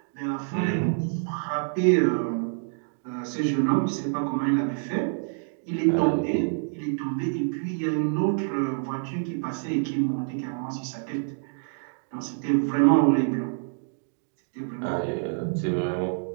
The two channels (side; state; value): left; silent; digital silence